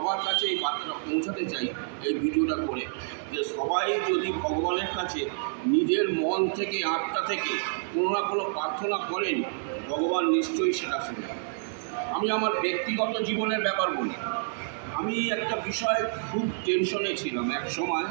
কাছে এই বার্তাটা পৌঁছাতে চাই এই ভিডিওটা করে, যে সবাই যদি ভগবানের কাছে নিজের মন থেকে আত্মা থেকে কোনো না কোনো প্রার্থনা করেন, ভগবান নিশ্চয়ই সেটা শুনে। আমি আমার ব্যক্তিগত জীবনের ব্যাপার বলি। আমি একটা বিষয় খুব টেনশনে ছিলাম এক সময়,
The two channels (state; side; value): silent; left; digital silence